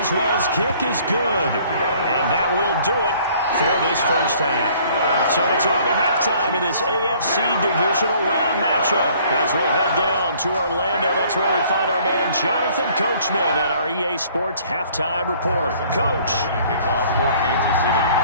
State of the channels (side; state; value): both; inverted; correlation -0.57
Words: kick is good. And that will do it for this first half. So it's on to halftime in this AFC Divisional Round matchup. As we'll head down to Orlando, that's where we find our man Jonathan Coachman at our EA Sports Halftime Report. Coach. Kickoff for Kansas City.